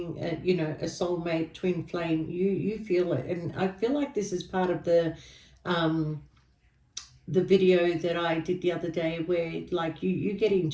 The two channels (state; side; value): identical; both; correlation 1.00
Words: you know, a soulmate, twin flame, you feel it. And I feel like this is part of the video that I did the other day, where like you get